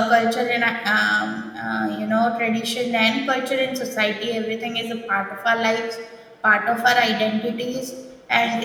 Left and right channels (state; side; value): identical; both; correlation 1.00